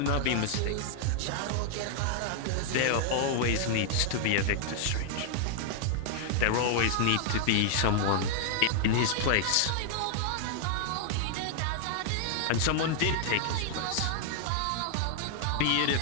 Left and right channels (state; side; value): different; both; correlation -0.01